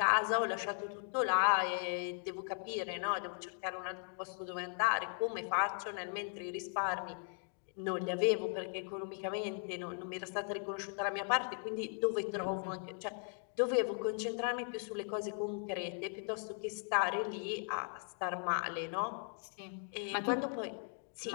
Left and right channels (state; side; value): silent; right; 53 dB below the other